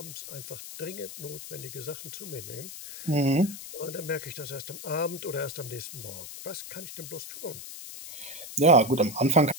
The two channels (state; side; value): noise; left; hiss, 11 dB below the sound